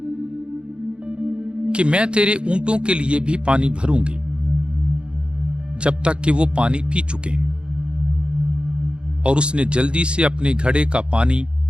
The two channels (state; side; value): late; left; 0.055 ms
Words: कि मैं तेरे ऊंटों के लिए भी पानी भरूंगी जब तक कि वो पानी पी चुके। और उसने जल्दी से अपने घड़े का पानी